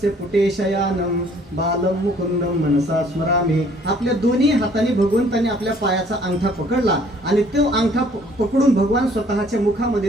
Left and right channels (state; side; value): normal; both; correlation 0.59